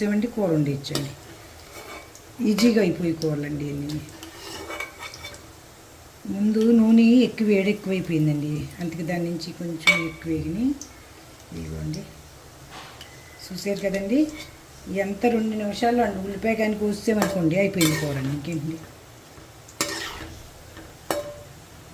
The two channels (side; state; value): both; identical; correlation 1.00